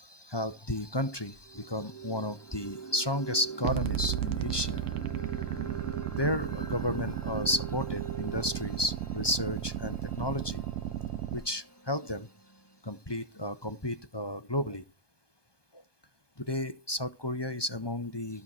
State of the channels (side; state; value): right; late; 1.2 ms